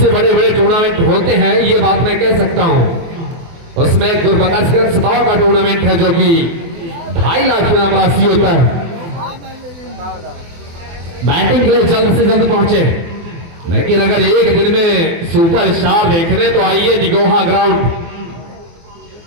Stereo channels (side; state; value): left; late; 24 ms